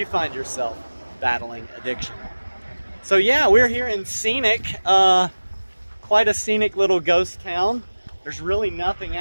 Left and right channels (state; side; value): inverted; both; correlation -1.00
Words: find yourself battling addiction. So yeah, we're here in scenic, quite a scenic little ghost town. There's really nothing